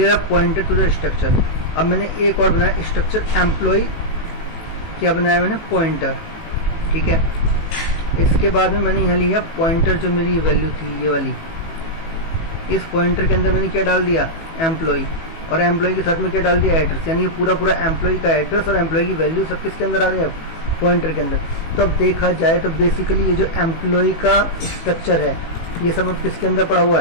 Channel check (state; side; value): late; right; 18 ms